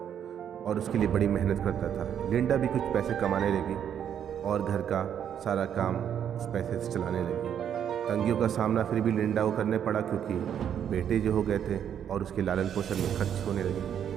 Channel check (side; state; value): left; quieter; 9.0 dB